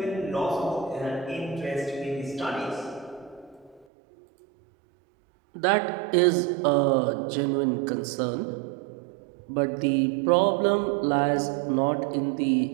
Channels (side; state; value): left; drops out; at 3.9 s